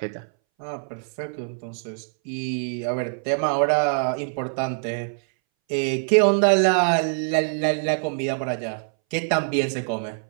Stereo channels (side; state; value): left; silent; 61 dB below the other